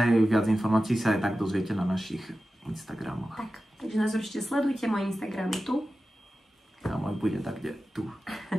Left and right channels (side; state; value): both; normal; correlation 0.94